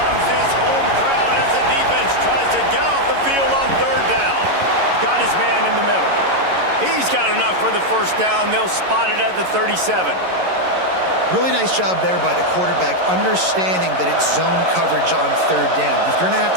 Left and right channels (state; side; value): late; left; 11 ms